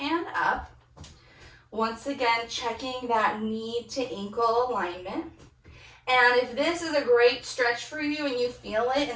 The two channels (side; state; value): both; identical; correlation 1.00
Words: up. Once again, checking that knee to ankle alignment. And if this is a great stretch for you and you feel it